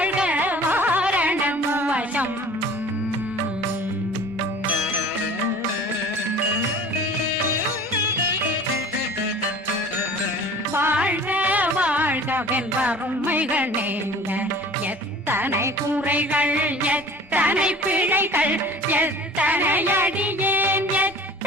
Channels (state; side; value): normal; both; correlation 0.44